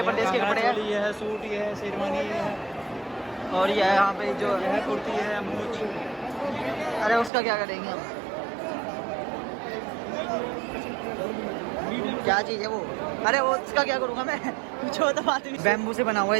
प्रदेश के कपड़े हैं। ये है सूट, ये है शेरवानी, ये है, और ये यहाँ पे जो ये है कुर्ती, है मूछ। अरे उसका क्या करेंगे हम, क्या चीज़ है वो? अरे वो उसका क्या करूँगा मैं? जो तो बात बैम्बू से बना हुआ है।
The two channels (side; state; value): left; drops out; at 7.3 s